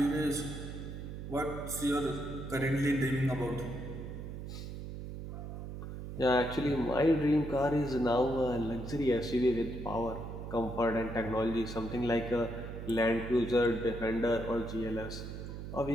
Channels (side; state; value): right; noise; hum, 8 dB below the sound